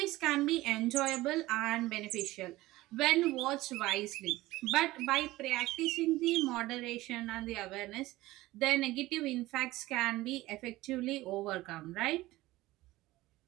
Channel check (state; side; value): quieter; left; 18.0 dB